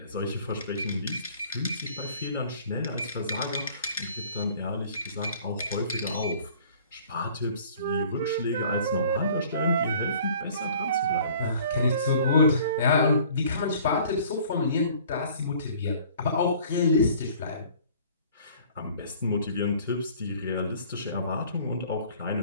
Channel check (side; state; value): both; inverted; correlation -0.52